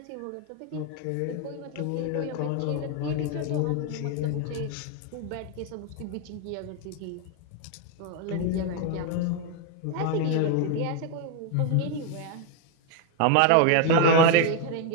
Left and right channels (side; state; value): both; different; correlation 0.01